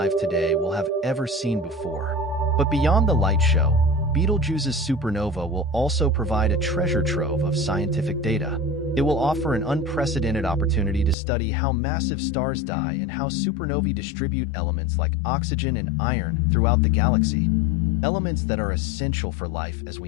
today will have ever seen before. But beyond the light show, Betelgeuse's supernova will also provide a treasure trove of scientific data. It will offer an unprecedented opportunity to study how massive stars die and how supernovae distribute elements like oxygen and iron throughout the galaxy, elements that are essential for life as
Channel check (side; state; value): right; drops out; at 11.2 s